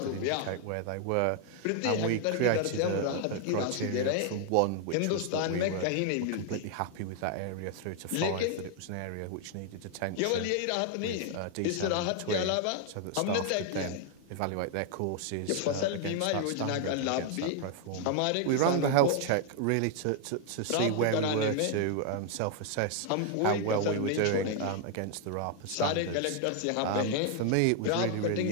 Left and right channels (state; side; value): different; both; correlation 0.00